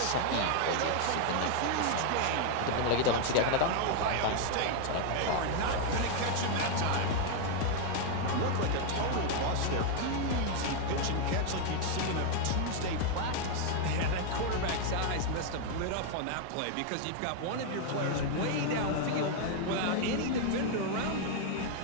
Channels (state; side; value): different; both; correlation 0.00